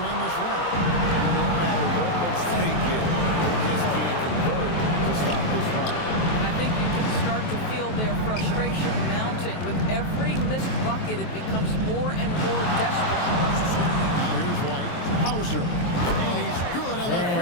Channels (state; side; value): late; right; 23 ms